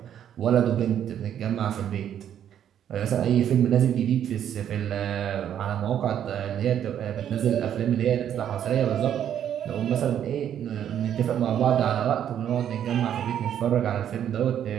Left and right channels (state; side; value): quieter; left; 9.8 dB